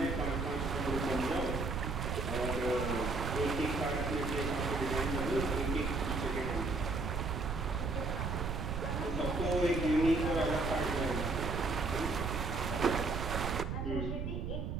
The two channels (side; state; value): right; noise; rumble, 2 dB below the sound